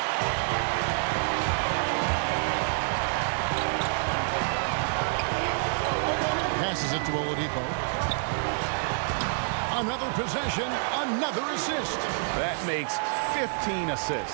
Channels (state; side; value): silent; left; 58 dB below the other